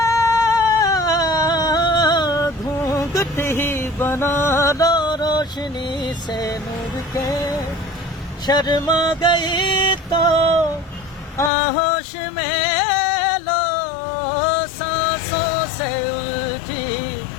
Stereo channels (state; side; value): drops out; right; at 11.5 s